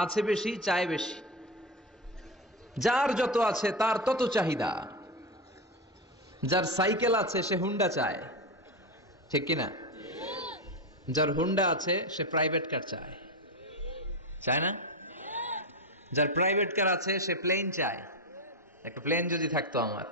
আছে বেশি চায় বেশি। যার যত আছে তার তত চাহিদা। যার সাইকেল আছে সে হুন্ডা চায়, ঠিক কিনা? যার হুন্ডা আছে সে প্রাইভেট কার চায়, চায় না? যার প্রাইভেট কার আছে সে প্লেন চায়, একটা প্লেন যদি থাকতো আমার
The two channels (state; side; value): normal; both; correlation 0.16